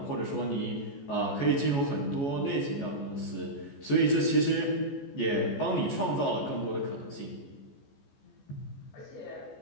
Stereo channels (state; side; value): late; right; 14 ms